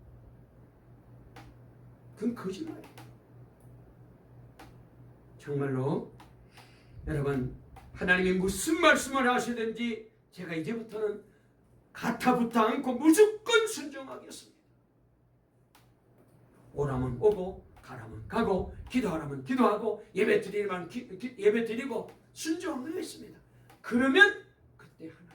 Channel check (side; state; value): both; identical; correlation 1.00